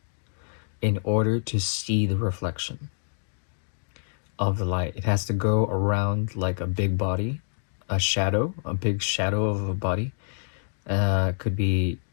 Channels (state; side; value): silent; right; digital silence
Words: in order to see the reflection of the light. It has to go around like a big body, a big shadow of a body. Could be